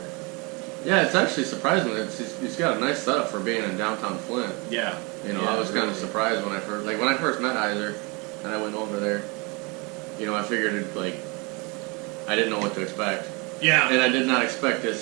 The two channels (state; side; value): quieter; left; 28.9 dB